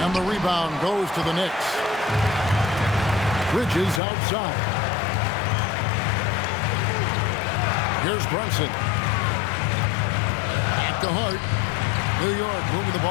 the rebound goes to the Knicks. Bridges outside. Here's Brunson. Back to Hart. New York moving the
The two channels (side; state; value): right; drops out; at 4.0 s